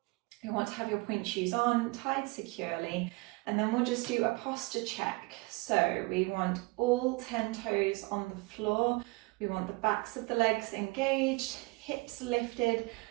You want to have your pointe shoes on, tied securely, and then we'll just do a posture check. So we want all 10 toes on the floor. We want the backs of the legs engaged, hips lifted,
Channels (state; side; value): quieter; left; 25.7 dB